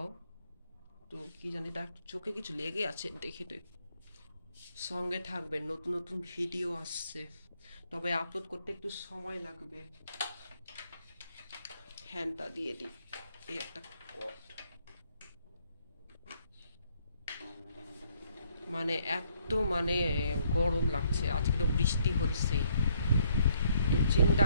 তো কি জানি, তার চোখে কিছু লেগে আছে, দেখে তো সঙ্গে থাকবেন, নতুন নতুন ভিডিও আসছে, তবে আপলোড করতে একটু সময় লাগবে। ফ্যানটা দিয়ে দিই, এই একটা কট, মানে এত গরম লাগছে, আজকে তো বৃষ্টি হচ্ছে। তো চিন্তা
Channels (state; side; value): inverted; both; correlation -0.68